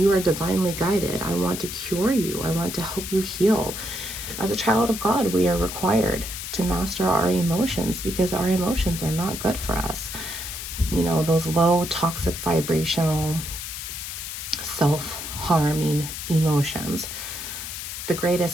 are divinely guided. I want to cure you. I want to help you heal. As a child of God, we are required to master our emotions, because our emotions are not good for us. You know, those low, toxic, vibrational, self-harming emotions. The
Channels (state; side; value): noise; left; hiss, 7 dB below the sound